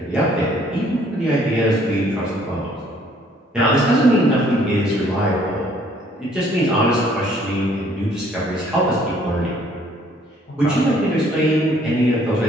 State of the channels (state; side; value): normal; both; correlation 0.61